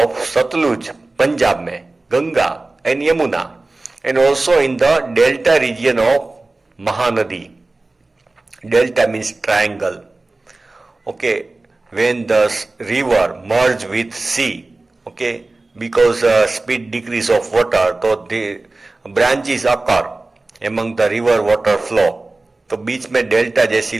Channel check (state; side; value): quieter; left; 3.2 dB